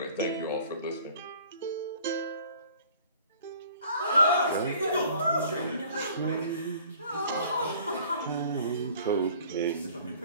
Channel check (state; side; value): inverted; both; correlation -0.51